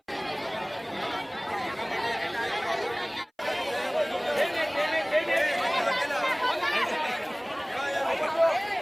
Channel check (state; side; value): identical; both; correlation 1.00